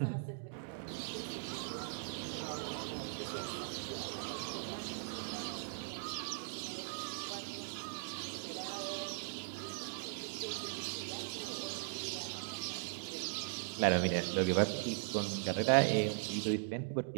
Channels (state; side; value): silent; left; digital silence